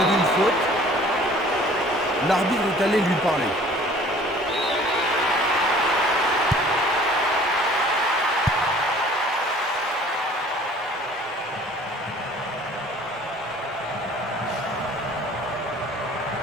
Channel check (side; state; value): both; normal; correlation 0.51